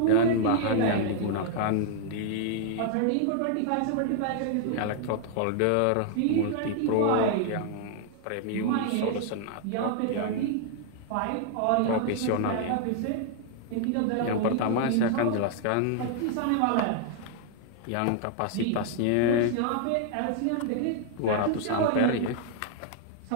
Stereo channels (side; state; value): both; different; correlation 0.00